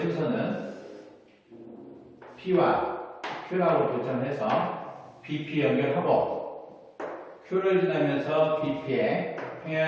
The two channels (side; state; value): both; identical; correlation 1.00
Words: 순서는 P와 Q라고 결정해서 BP 연결하고 Q를 지나면서 BP의